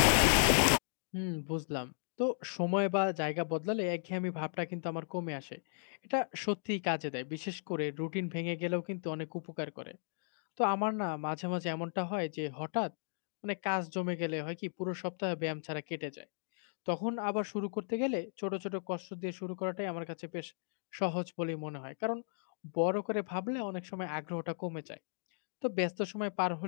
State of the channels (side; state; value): right; silent; digital silence